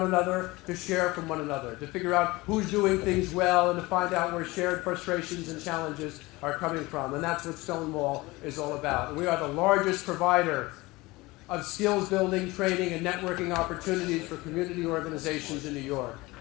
another, to share from one another, to figure out who's doing things well, and to find out where shared frustrations and challenges are coming from. And that's what Stonewall is all about. And we are the largest provider of skills building, training, and networking opportunities for community organizations in New York.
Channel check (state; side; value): quieter; right; 21.5 dB